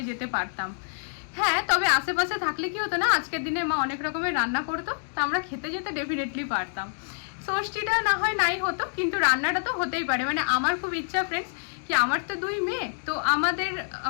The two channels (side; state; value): right; silent; digital silence